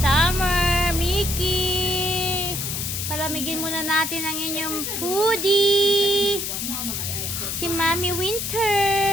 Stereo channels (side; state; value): left; noise; hiss, 3 dB below the sound